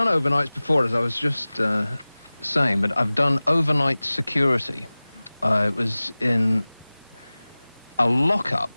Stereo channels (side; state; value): both; inverted; correlation -0.99